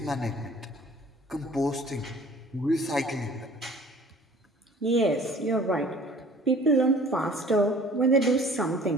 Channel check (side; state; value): both; normal; correlation 0.49